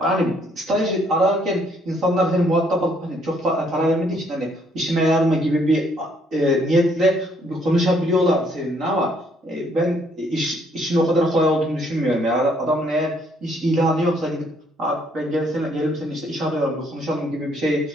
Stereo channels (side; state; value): both; normal; correlation 0.67